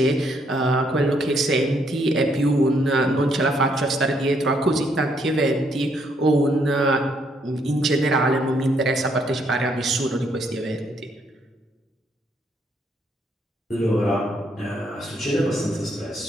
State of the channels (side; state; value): both; normal; correlation 0.72